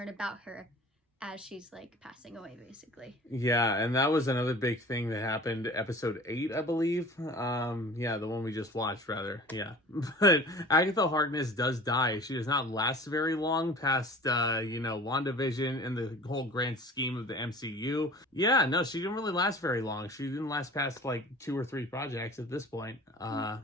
about her as she's like passing away, basically. Yeah, and that was another big thing that happened episode 8, I believe. Yeah, the one we just watched, rather. Yeah. But Agatha Harkness does die. She does not last very long past, WandaVision and the whole grand scheme of the MCU. Yeah, no, she didn't really last very long. She didn't last past like 2 or 3 projects at this point.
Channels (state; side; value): normal; both; correlation 0.42